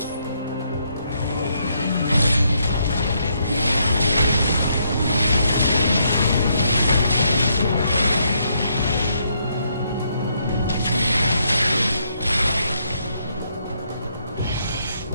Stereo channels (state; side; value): inverted; both; correlation -0.75